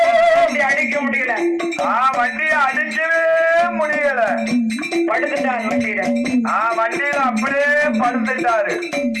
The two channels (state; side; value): identical; both; correlation 1.00